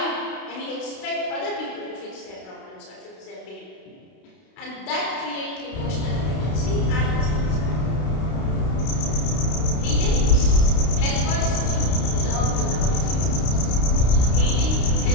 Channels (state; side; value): late; right; 32 ms